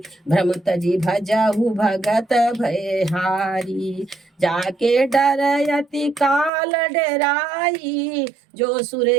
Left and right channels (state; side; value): drops out; left; at 6.5 s